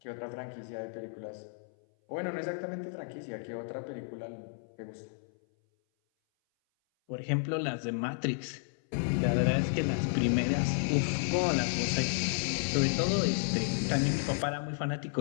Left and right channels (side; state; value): right; silent; 56 dB below the other